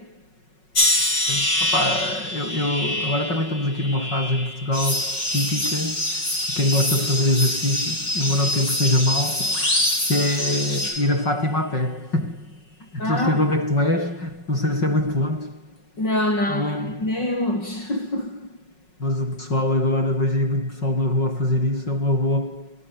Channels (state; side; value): late; right; 5.4 ms